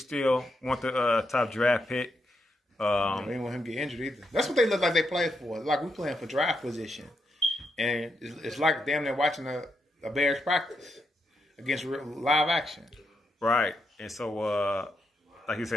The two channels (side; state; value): both; normal; correlation 0.82